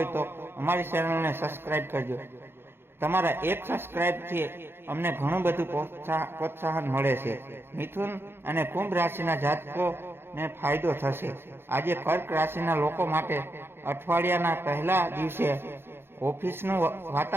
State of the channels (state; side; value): late; left; 0.11 ms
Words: તો અમારી ચેનલને સબસ્ક્રાઇબ કરજો। તમારા એક સબસ્ક્રાઇબથી અમને ઘણું બધું પ્રોત્સાહન મળે છે। મિથુન અને કુંભ રાશિના જાતકોને ફાયદો થશે। આજે કર્ક રાશિના લોકો માટે અઠવાડિયાના પહેલા દિવસે ઓફિસનું